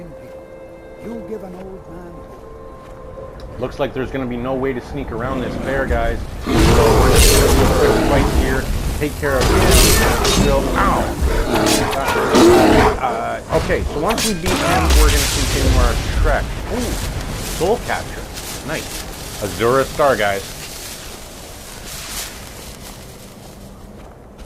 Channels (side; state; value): both; identical; correlation 1.00